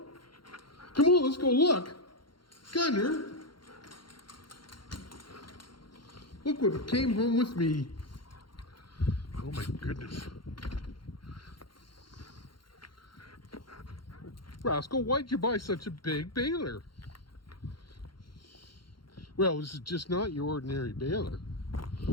Come on, let's go look. Gunner, look what came home with me. Oh my goodness. Rascal, why'd you buy such a big baler? Well, this is just not your ordinary baler.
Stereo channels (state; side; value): late; right; 0.72 ms